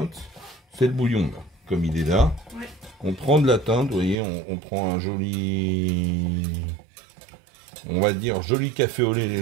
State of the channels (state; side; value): drops out; left; at 4.2 s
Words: C'est le bouillon, là. Comme il est là. Ouais. On prend de la teinte, vous voyez, on prend un joli, on va dire, joli café au lait